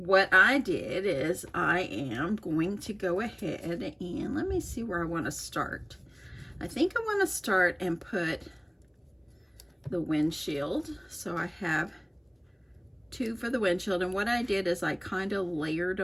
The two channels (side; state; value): both; identical; correlation 1.00